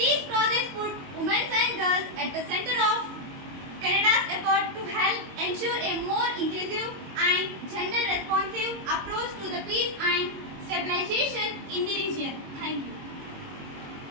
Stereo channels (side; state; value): left; late; 22 ms